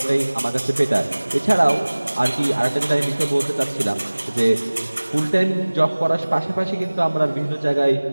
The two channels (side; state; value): both; inverted; correlation -1.00